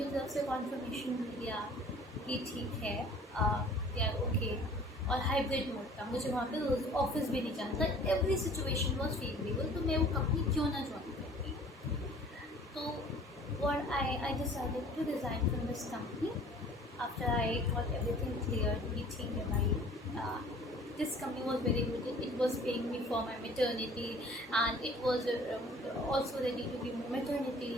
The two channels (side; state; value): both; normal; correlation 0.50